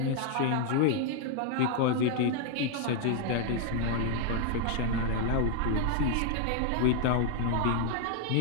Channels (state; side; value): different; both; correlation 0.00